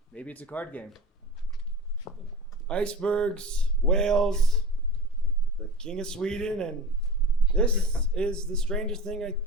Maybe it's a card game. Icebergs, whales, the King of Sweden, and This is the strangest thing I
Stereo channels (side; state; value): both; normal; correlation 0.33